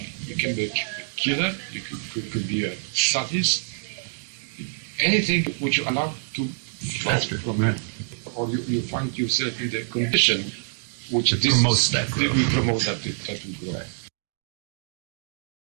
You can be a killer, you could be a sadist, anything which you allow to flow from it. Or you find yourself in the condition which promotes that growth. We promote that will grow. Right.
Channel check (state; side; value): silent; left; 61 dB below the other